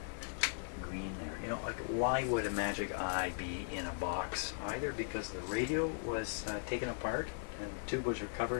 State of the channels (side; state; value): right; silent; digital silence